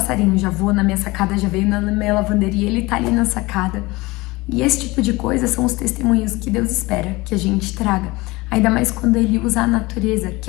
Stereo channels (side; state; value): right; quieter; 22.1 dB